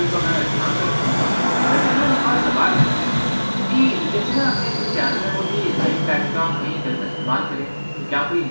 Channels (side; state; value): both; inverted; correlation -1.00